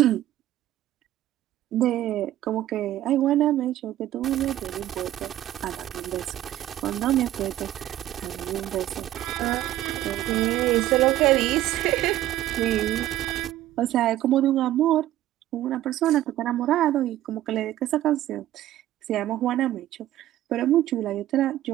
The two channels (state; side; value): quieter; left; 13.8 dB